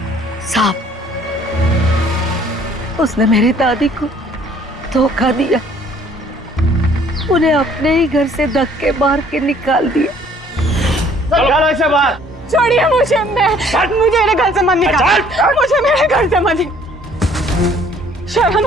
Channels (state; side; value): normal; both; correlation 0.58